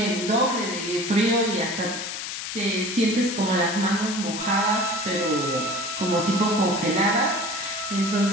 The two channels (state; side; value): noise; left; hiss, 6 dB below the sound